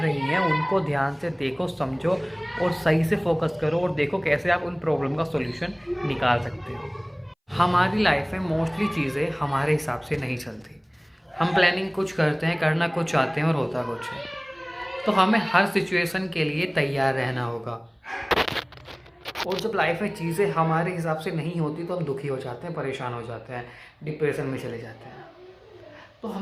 हैं उनको ध्यान से देखो, समझो और सही से फोकस करो और देखो कैसे आप उन प्रॉब्लम का सॉल्यूशन निकाल सकते हो। हमारी लाइफ में मोस्टली चीज़ें हमारे हिसाब से नहीं चलती। हम प्लानिंग कुछ करते हैं, करना कुछ चाहते हैं और होता कुछ है। तो हमें हर सिचुएशन के लिए तैयार रहना होगा। और जब लाइफ में चीज़ें हमारे हिसाब से नहीं होती तो हम दुखी हो जाते हैं, परेशान हो जाते हैं, डिप्रेशन में चले जाते हैं। तो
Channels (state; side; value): identical; both; correlation 1.00